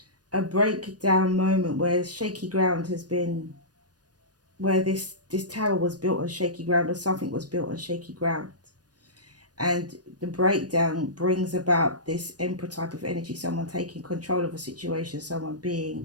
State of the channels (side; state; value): left; late; 0.69 ms